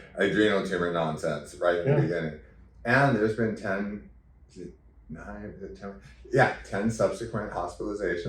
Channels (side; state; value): both; identical; correlation 1.00